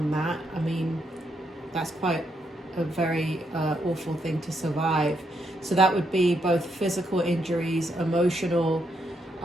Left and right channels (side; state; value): both; normal; correlation 0.78